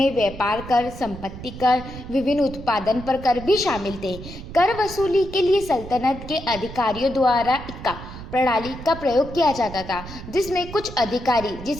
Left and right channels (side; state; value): right; noise; rumble, 12 dB below the sound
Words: व्यापार कर, संपत्ति कर, विभिन्न उत्पादन पर कर भी शामिल थे। कर वसूली के लिए सल्तनत के अधिकारियों द्वारा इक्का प्रणाली का प्रयोग किया जाता था, जिसमें कुछ अधिकारी